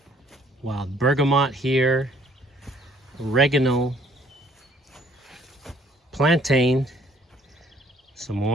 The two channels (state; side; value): normal; both; correlation 0.61